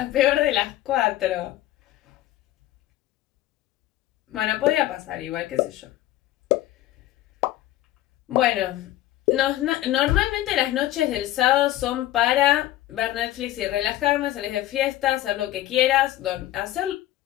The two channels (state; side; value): quieter; right; 14.5 dB